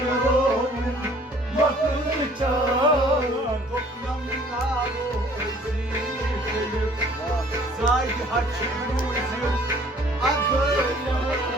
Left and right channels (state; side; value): normal; both; correlation 0.55